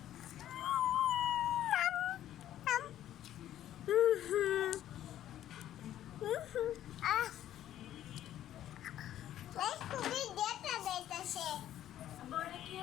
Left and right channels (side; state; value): right; quieter; 12.1 dB